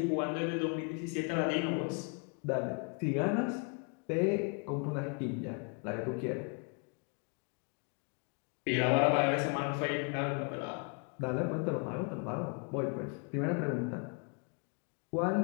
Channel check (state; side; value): quieter; right; 37.7 dB